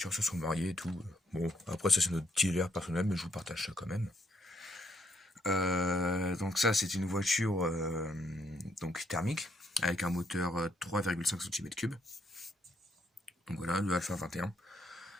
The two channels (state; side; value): normal; both; correlation 0.73